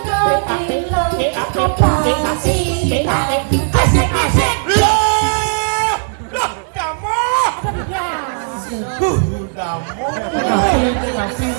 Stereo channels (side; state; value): left; silent; digital silence